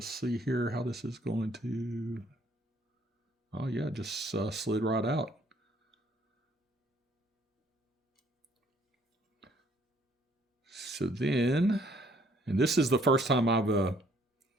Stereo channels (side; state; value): both; normal; correlation 0.63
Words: see here how this is going to, oh yeah, just slid right out. So then, and this is the first time I've